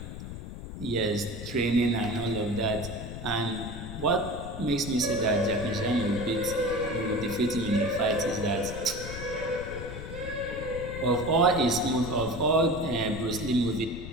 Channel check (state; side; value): noise; left; rumble, 9 dB below the sound